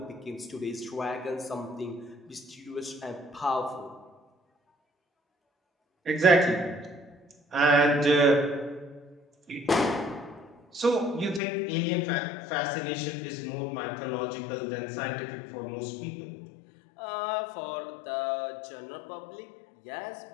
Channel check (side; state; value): right; drops out; at 11.4 s